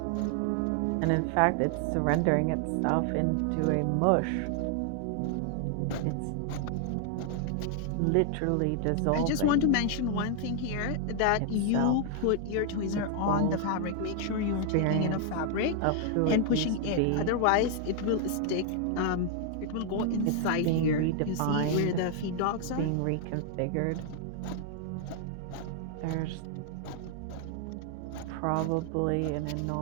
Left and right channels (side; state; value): both; different; correlation 0.00